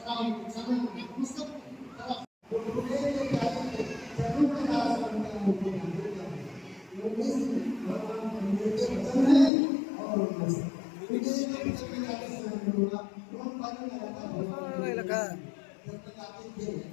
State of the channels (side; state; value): right; drops out; at 9.5 s